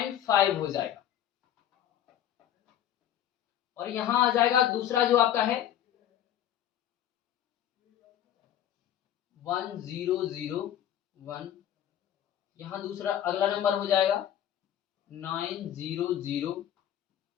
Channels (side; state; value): right; quieter; 10.8 dB